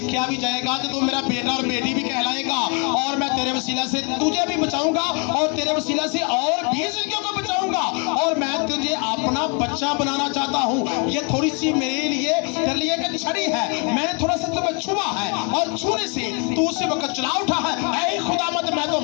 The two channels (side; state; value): right; quieter; 35.1 dB